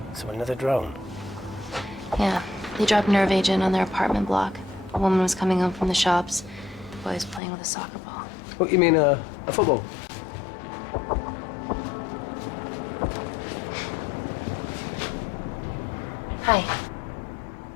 So another drone? Yeah, they dropped nerve agent on their apartment block. A woman was coming home from the shops. The boy was playing with a soccer ball. What, you mean a football? Hi.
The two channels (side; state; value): right; drops out; at 7.4 s